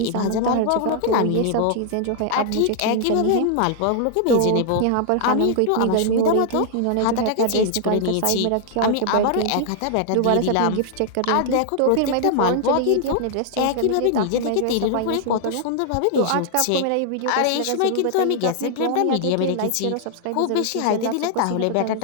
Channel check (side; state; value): both; different; correlation 0.00